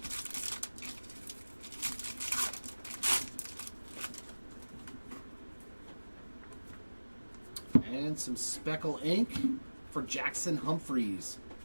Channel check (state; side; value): inverted; both; correlation -1.00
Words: And some Speckle ink for Jackson Humphreys.